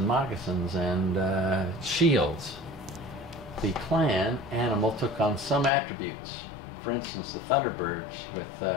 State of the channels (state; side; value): drops out; right; at 5.7 s